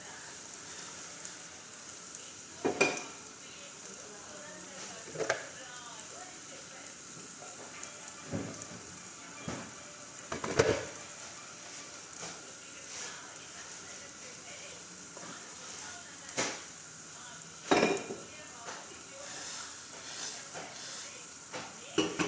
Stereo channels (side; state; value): both; identical; correlation 1.00